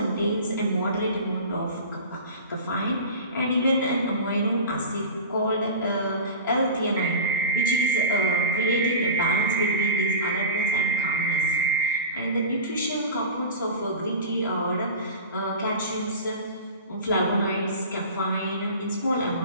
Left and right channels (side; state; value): both; inverted; correlation -0.33